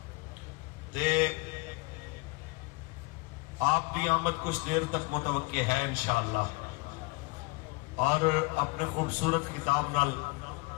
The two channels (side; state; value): right; quieter; 25.1 dB